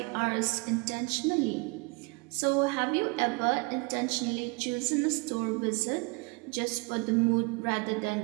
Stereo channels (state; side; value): quieter; left; 29.3 dB